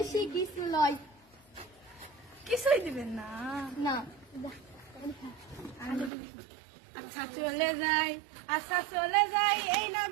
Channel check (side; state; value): left; drops out; at 6.1 s